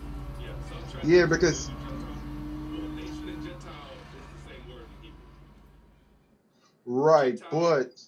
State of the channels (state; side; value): identical; both; correlation 1.00